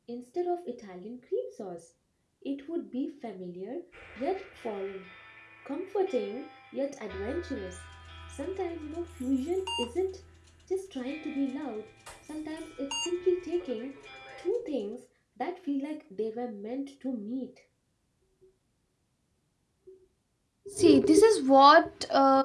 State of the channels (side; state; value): both; identical; correlation 1.00